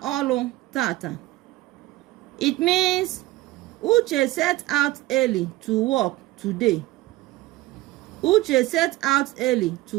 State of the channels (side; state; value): left; quieter; 17.6 dB